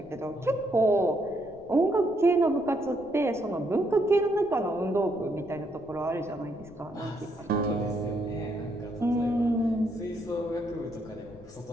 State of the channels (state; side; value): noise; left; rumble, 24 dB below the sound